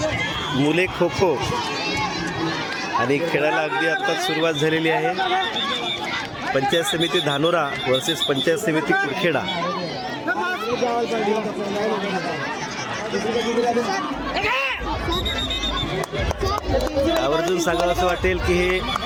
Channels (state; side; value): identical; both; correlation 1.00